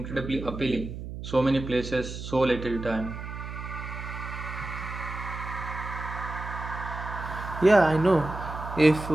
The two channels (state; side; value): noise; right; hum, 8 dB below the sound